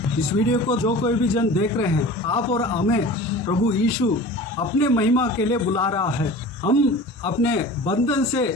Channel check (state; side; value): normal; both; correlation 0.38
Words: इस वीडियो को जो कोई भी जन देख रहे हैं, आप और हमें प्रभु यीशु अपने महिमा के लिए बुला रहा है। हम अपने बंधन से